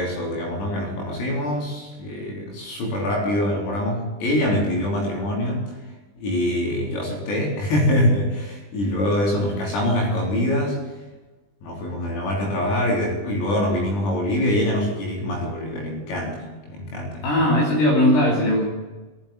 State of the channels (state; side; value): late; right; 20 ms